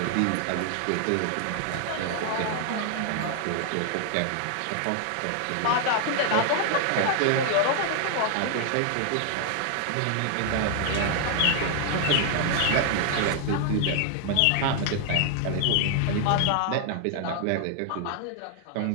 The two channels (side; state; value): both; different; correlation 0.00